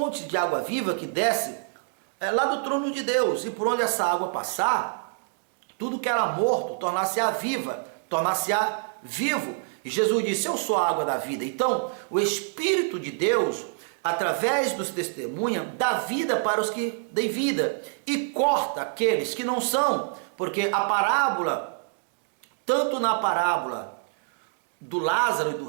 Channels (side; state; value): left; silent; 61 dB below the other